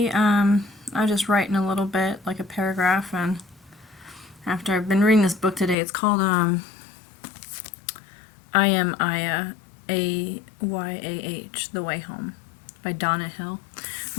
I was just writing a little bit, like a paragraph, and after I've been reading this book today, it's called I Am Aya, Ayah, The Way Home, by Donna Hill.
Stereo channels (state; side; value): drops out; right; at 5.8 s